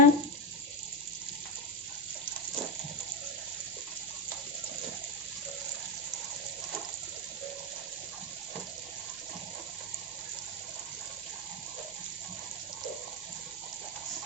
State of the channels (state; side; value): normal; both; correlation 0.11